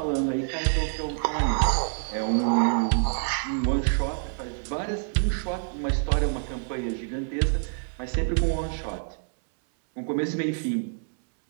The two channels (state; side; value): silent; left; 60 dB below the other